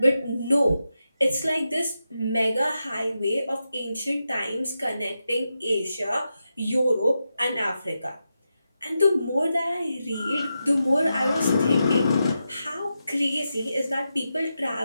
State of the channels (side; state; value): both; inverted; correlation -0.88